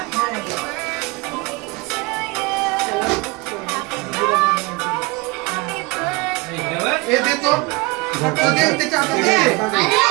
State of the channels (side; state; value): left; quieter; 25.0 dB